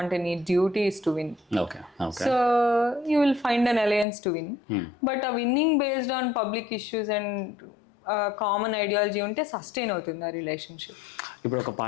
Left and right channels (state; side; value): drops out; right; at 4.0 s